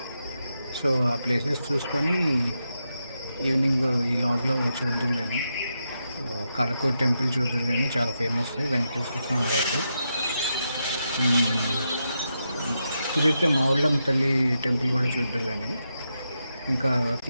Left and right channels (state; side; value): inverted; both; correlation -0.85